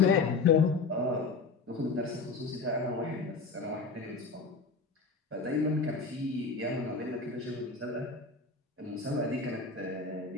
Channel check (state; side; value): quieter; right; 4.2 dB